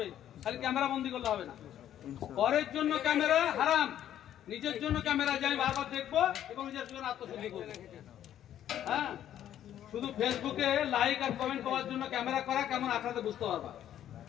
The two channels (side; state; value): right; quieter; 11.1 dB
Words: খালি ক্যামেরা বন্দি করলে হবে না। পরের জন্য ক্যামেরা হারাম, নিজের জন্য ক্যামেরা যে আমি বারবার দেখবো এবং নিজের জন্য আত্মশুদ্ধি করবো। হ্যাঁ, শুধু ফেসবুকে লাইক আর কমেন্ট পাওয়ার জন্য ক্যামেরা করা কেমন আখড়াতে বুঝতে পারবা।